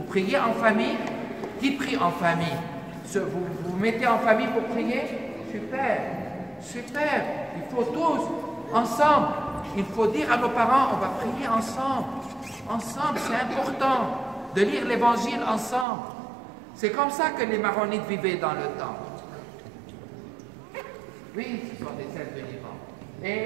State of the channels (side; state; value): left; drops out; at 15.9 s